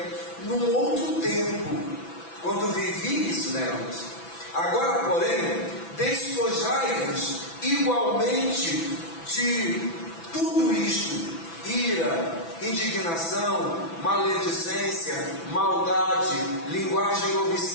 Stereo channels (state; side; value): late; right; 6.0 ms